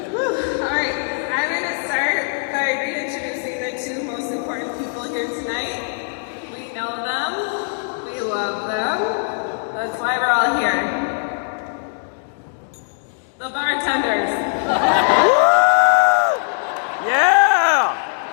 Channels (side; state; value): right; silent; digital silence